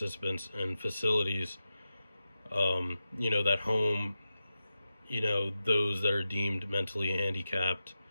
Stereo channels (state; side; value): inverted; both; correlation -0.92